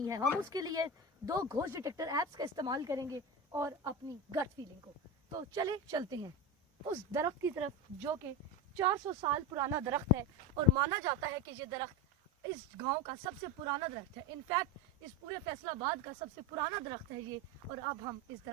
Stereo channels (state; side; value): normal; both; correlation 0.20